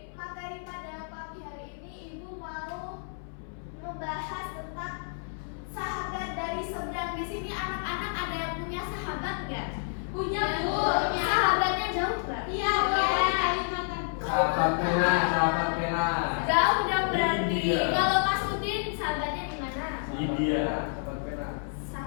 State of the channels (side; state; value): right; silent; 58 dB below the other